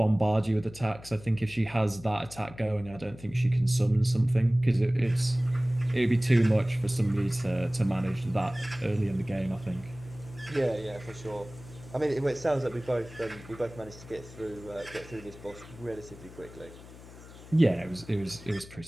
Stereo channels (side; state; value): left; noise; hum, 18 dB below the sound